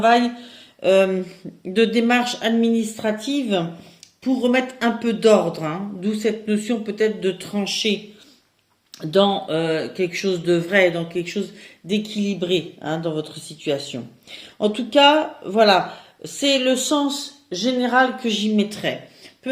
de démarche administrative pour remettre un peu d'ordre, hein, d'où cette notion peut-être de trancher dans quelque chose de vrai, dans quelque chose d'équilibré, hein, dans votre situation. En tout cas, voilà, c'est le sens général que j'y mettrai.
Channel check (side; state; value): both; identical; correlation 1.00